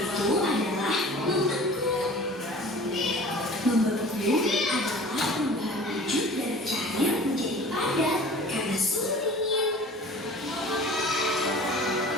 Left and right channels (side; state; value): both; normal; correlation 0.43